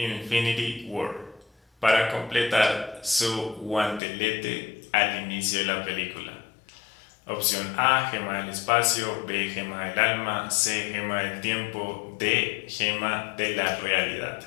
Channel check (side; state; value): right; drops out; at 4.0 s